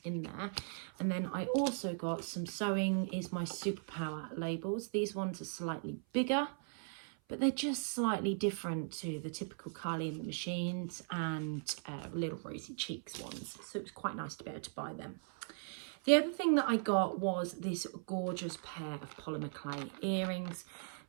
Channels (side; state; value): left; silent; 52 dB below the other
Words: in there. And then I also got some Sewing is My Superpower labels. These ones are slightly bigger, but they're just slightly different to the typical Carly and the Machines and Little Rosy Cheeks ones. So it was quite nice to be able to buy them. The other thing that I got was this gorgeous pair of polymer clay earrings.